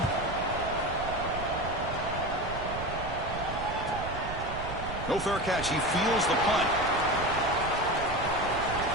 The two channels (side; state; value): right; noise; rumble, 8 dB below the sound